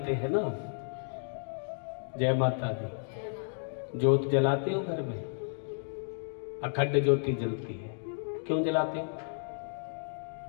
हैं ना, जय माता दी, ज्योत जलाते हो घर में, अखंड ज्योति जलती है। क्यों जलाते हो?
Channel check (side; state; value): right; silent; digital silence